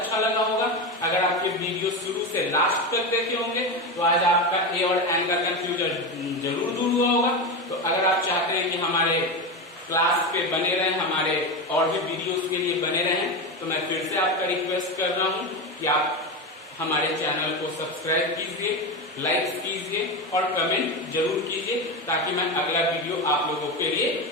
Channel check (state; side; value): normal; both; correlation 0.17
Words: लगा होगा। अगर आप ये वीडियो शुरू से लास्ट तक देखे होंगे तो आज आपका ए और एन का कंफ्यूजन जरूर दूर हुआ होगा। तो अगर आप चाहते हैं कि हमारे क्लास पे बने रहें, हमारे और भी वीडियोस के लिए बने रहें, तो मैं फिर से आपका रिक्वेस्ट कर रहा हूँ कि आप हमारे चैनल को सब्सक्राइब कीजिए, लाइक कीजिए और कमेंट जरूर कीजिए, ताकि मैं अगला वीडियो आप लोगों के लिए